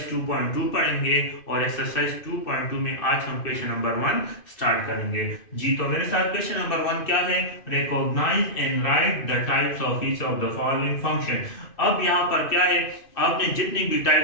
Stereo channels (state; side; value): late; right; 2.5 ms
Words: 2.2 पढ़ेंगे और एक्सरसाइज 2.2 में आज हम क्वेश्चन नंबर 1 स्टार्ट करेंगे। जी तो मेरे साथ क्वेश्चन नंबर 1 क्या है? Recognise and write the types of each of the following function. अब यहाँ पर क्या है, आपने जितनी भी